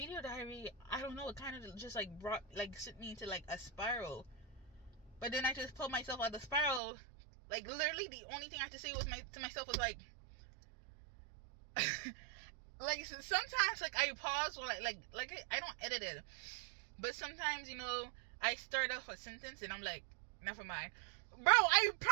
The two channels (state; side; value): drops out; left; at 6.8 s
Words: diary, I don't know, it kind of just like brought, like, sent me into like a spiral. But then I just pulled myself out of the spiral. Like, literally the only thing I had to say was to myself was like like, sometimes like I pause or like I don't edit it, but sometimes, you know, I start off a sentence and I'm like, never mind. Bro, I